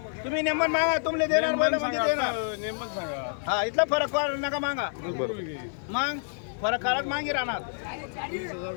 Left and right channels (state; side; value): silent; right; digital silence